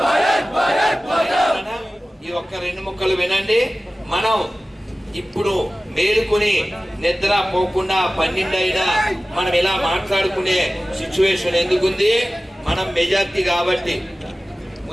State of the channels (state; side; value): normal; both; correlation 0.97